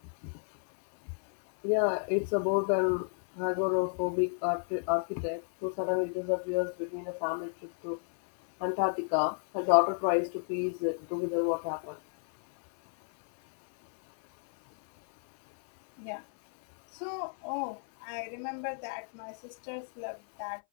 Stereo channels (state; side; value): silent; right; 57 dB below the other